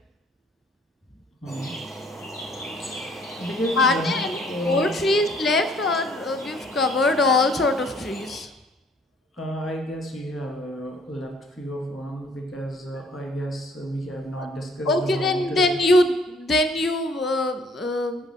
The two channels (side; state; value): both; normal; correlation 0.60